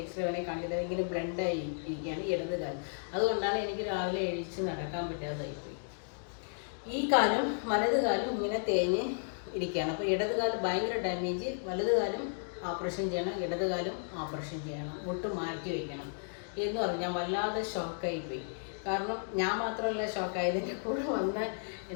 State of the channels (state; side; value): silent; right; digital silence